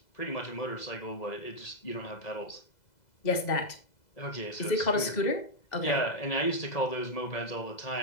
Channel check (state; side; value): late; right; 2.0 ms